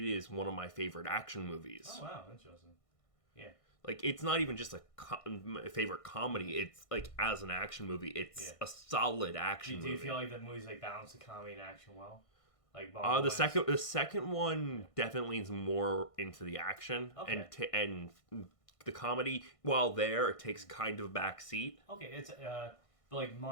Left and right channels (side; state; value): right; late; 1.6 ms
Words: one of my favorite action movies. Oh, wow. Interesting. Yeah. Like, it's not even just a favorite comedy. It's, like, as an action movie, it's a solid action movie. Do you feel like the movies, balance the comedy and action well? The second one definitely is more into the action. Okay. And the comedy, while it takes kind of a back seat. Okay, it's... But